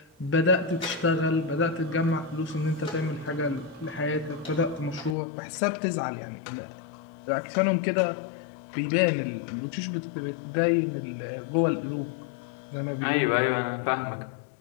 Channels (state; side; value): drops out; right; at 5.2 s